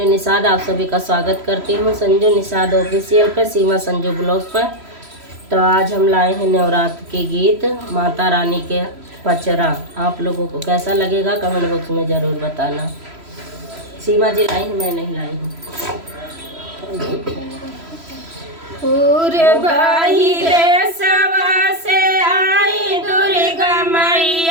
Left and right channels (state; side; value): late; left; 3.0 ms